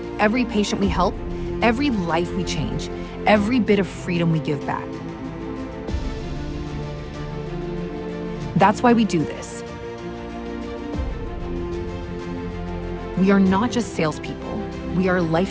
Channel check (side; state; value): both; identical; correlation 1.00